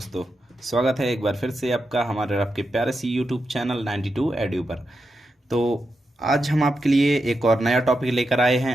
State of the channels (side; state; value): both; normal; correlation 0.87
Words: स्वागत है एक बार फिर से आपका हमारे आपके प्यारे सी यूट्यूब चैनल 92 एड्यू पर। तो आज हम आपके लिए एक और नया टॉपिक लेकर आए